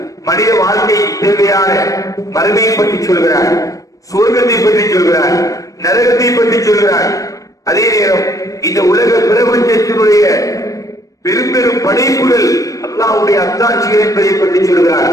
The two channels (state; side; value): late; right; 0.16 ms